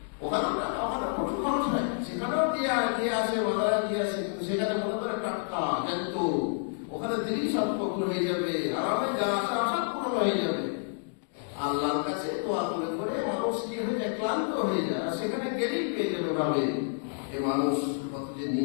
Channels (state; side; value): silent; right; digital silence